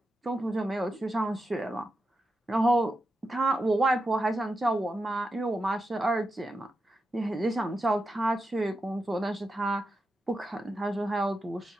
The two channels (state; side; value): normal; both; correlation 0.88